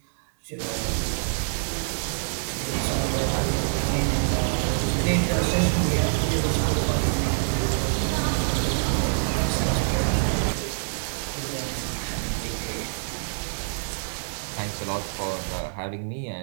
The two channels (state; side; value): silent; left; digital silence